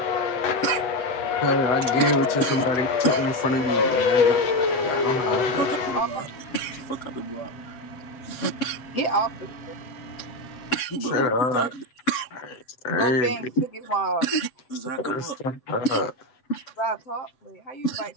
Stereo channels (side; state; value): right; late; 7.8 ms